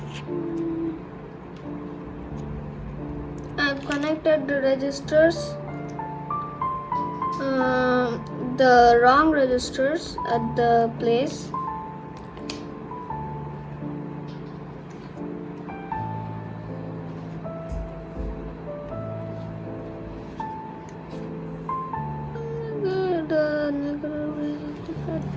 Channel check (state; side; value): identical; both; correlation 1.00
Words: I've connected the registers, the wrong registers at the place. The negative